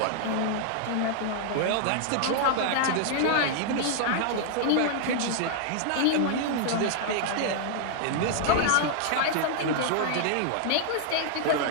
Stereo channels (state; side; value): different; both; correlation -0.01